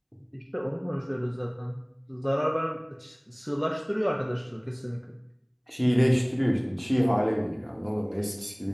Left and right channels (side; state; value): both; identical; correlation 1.00